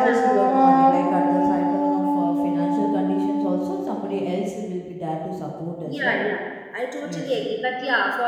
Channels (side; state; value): both; identical; correlation 1.00